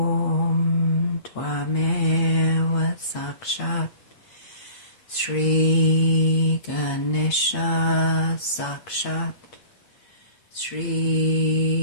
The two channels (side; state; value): right; late; 8.4 ms